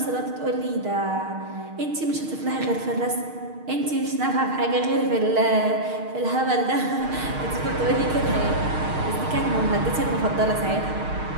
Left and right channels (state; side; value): late; left; 6.5 ms